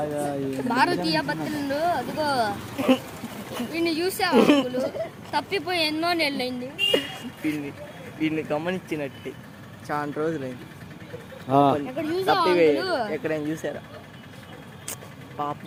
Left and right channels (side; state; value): both; identical; correlation 1.00